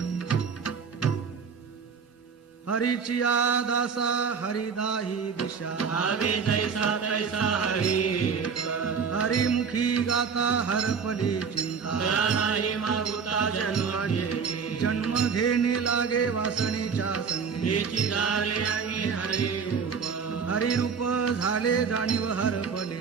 हरीचिया दासा हरिदाही दिशा भावे जैसा तैसा हरी हरिमुखी गाता हरपली चिंता दया नाही मागुता जन्म घेणे जन्म घेणे लागे वासनेच्या संगी हेची झाले आणि हरी रूप हरिरूप झाले जाणीव हरपले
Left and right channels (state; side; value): quieter; left; 6.1 dB